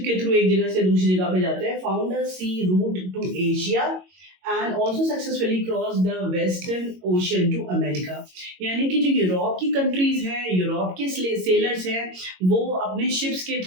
के थ्रू एक जगह से दूसरी जगह पे जाते हैं, found a sea route to Asia and also successfully cross the western ocean to America. यानी कि जो यूरोप की कंट्रीज हैं, यूरोप के सेलर्स हैं, वो अपने शिप्स के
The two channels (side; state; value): left; late; 22 ms